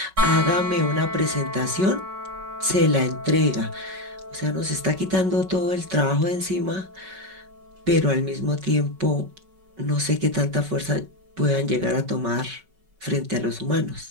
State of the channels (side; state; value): left; late; 5.3 ms